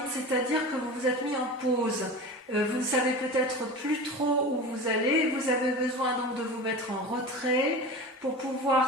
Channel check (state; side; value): normal; both; correlation 0.31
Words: c'est-à-dire que vous vous êtes mis en pause. Vous ne savez peut-être plus trop où vous allez. Vous avez besoin donc de vous mettre en retrait pour